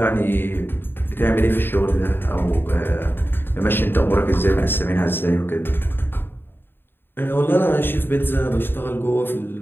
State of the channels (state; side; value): late; right; 0.10 ms